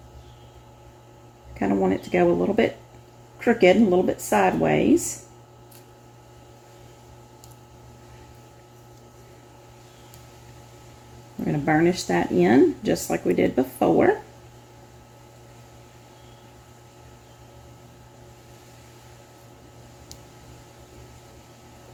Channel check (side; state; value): both; identical; correlation 1.00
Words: Kind of want it to go a little bit crooked, a little bit sideways. We're going to burnish that in just like we did before.